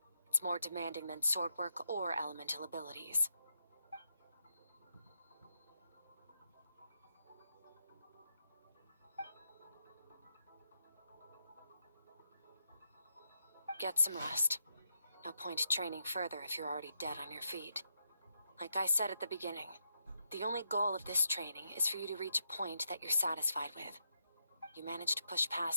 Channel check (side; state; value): both; inverted; correlation -0.82